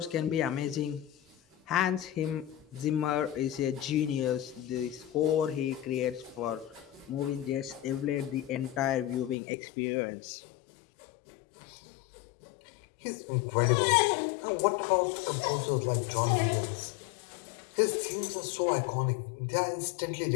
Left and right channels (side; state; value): right; drops out; at 9.3 s